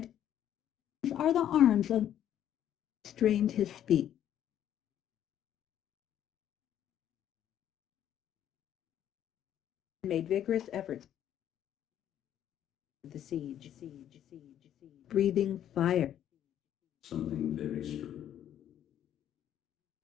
are the arms of strained his speech. Made vigorous efforts. The siege. Breathing fire. something very strong.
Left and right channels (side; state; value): right; quieter; 10.7 dB